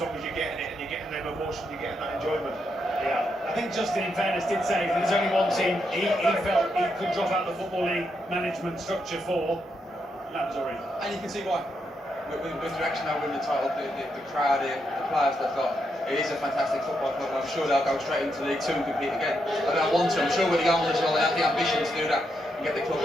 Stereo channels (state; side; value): normal; both; correlation 0.81